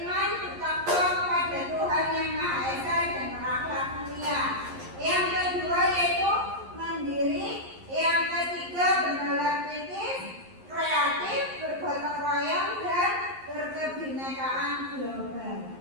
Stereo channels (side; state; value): left; late; 11 ms